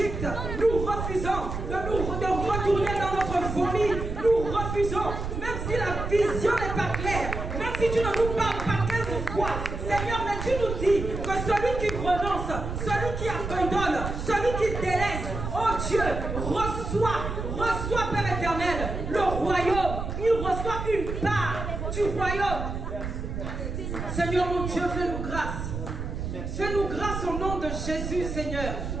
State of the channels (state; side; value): noise; right; rumble, 5 dB below the sound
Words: Nous refusons de retourner dans notre folie. Nous refusons, même si la vision n'est pas claire, même si tu ne nous parles pas 15 fois. Seigneur, mais tu nous dis que celui qui renonce, celui qui abandonne, celui qui délaisse, oh Dieu, reçoit, Père éternel, le royaume. Il reçoit une part du royaume. Seigneur mon Dieu, fais-nous grâce. Fais-nous grâce au nom de Jésus, Seigneur.